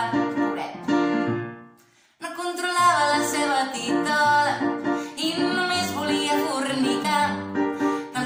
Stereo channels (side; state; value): both; identical; correlation 1.00